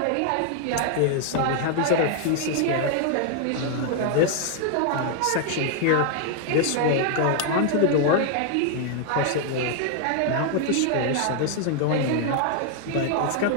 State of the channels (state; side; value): different; both; correlation 0.00